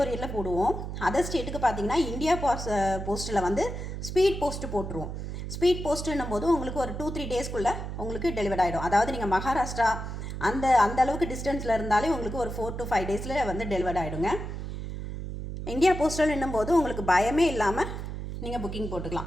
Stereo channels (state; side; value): noise; right; hum, 6 dB below the sound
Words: போடுவோம். அதர் ஸ்டேட்டுக்கு பார்த்தீங்கன்னா இந்தியா போஸ்ட்டில் வந்து ஸ்பீட் போஸ்ட்டு போட்டுருவோம். ஸ்பீட் போஸ்ட்டுன்னும் போது உங்களுக்கு ஒரு 2-3 டேஸ்க்குள்ளே உங்களுக்கு டெலிவரி ஆகிடும். அதாவது நீங்கள் மகாராஷ்டிரா அந்த அளவுக்கு டிஸ்டன்ஸில் இருந்தாலே உங்களுக்கு ஒரு 4 to 5 டேஸில் வந்து டெலிவரி ஆகிடுங்க. இந்தியா போஸ்டல்ன்னும் போது உங்களுக்கு பயமே இல்லாமல் நீங்கள் புக்கிங்